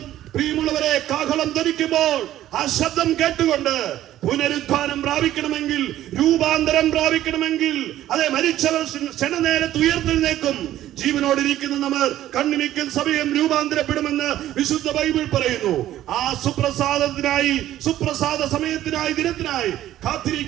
പ്രിയമുള്ളവരെ, കാഹളം ധരിക്കുമ്പോൾ ആ ശബ്ദം കേട്ടുകൊണ്ട് പുനരുദ്ധാനം പ്രാപിക്കണമെങ്കിൽ, രൂപാന്തരം പ്രാപിക്കണമെങ്കിൽ, അതെ, മരിച്ചവർ ക്ഷണനേരത്ത് ഉയർത്തെഴുന്നേക്കും. ജീവനോടിരിക്കുന്ന നമ്മൾ കണ്ണിമിക്കൽ സമയം രൂപാന്തരപ്പെടുമെന്ന് വിശുദ്ധ ബൈബിൾ പറയുന്നു. ആ സുപ്രസാദത്തിനായി, സുപ്രസാദ സമയത്തിനായി, ദിനത്തിനായി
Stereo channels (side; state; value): left; quieter; 13.2 dB